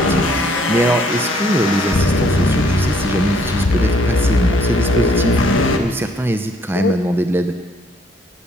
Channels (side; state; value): both; normal; correlation 0.64